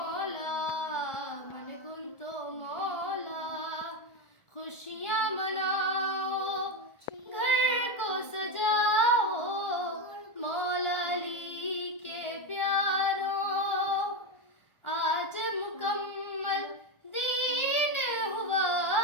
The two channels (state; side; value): late; right; 1.4 ms